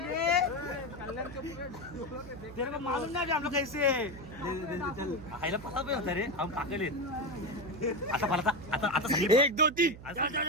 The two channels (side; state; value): right; noise; hum, 15 dB below the sound